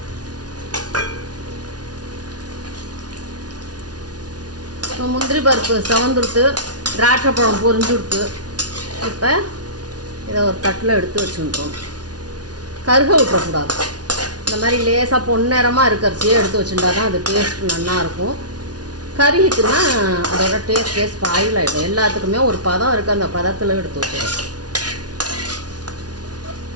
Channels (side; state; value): left; late; 0.69 ms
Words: முந்திரி பருப்பு செவந்துடுத்து, திராட்சை பழம் பொரிஞ்சுடுத்து. இப்போ இதை ஒரு தட்டில் எடுத்து வச்சுருக்கோம். கருக விட்டுறக்கூடாது. இந்த மாதிரி லேசாக பொன்னிறமாக இருக்கிறச்சியே எடுத்து வச்சுட்டா தான் அது டேஸ்ட் நல்லாயிருக்கும். கருகிட்டுன்னா அதோட டேஸ்ட் ஸ்பாயில் ஆகிடும். எல்லாத்துக்குமே ஒரு பதம் இருக்குது, அந்த பதத்தில் எடுத்து வச்சுருவோம்.